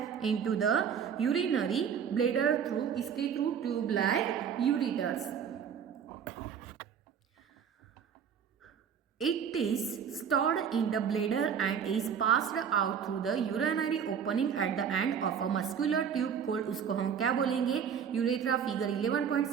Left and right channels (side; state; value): left; quieter; 7.6 dB